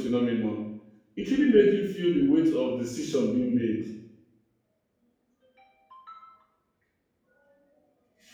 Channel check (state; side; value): identical; both; correlation 1.00